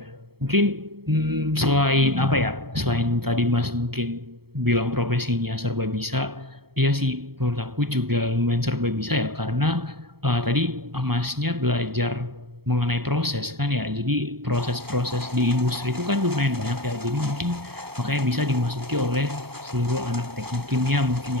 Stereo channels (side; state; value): left; late; 0.96 ms